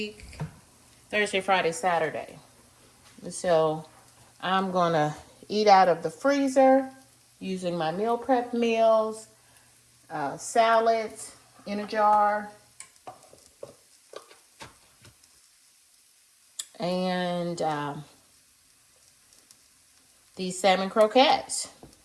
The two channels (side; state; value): both; identical; correlation 1.00